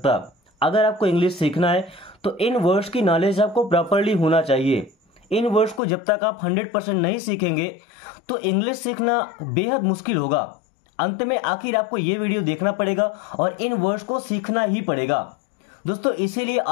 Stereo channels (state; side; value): drops out; right; at 5.8 s